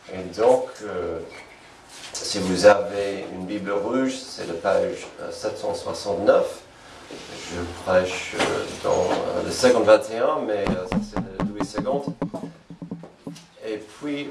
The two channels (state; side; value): identical; both; correlation 1.00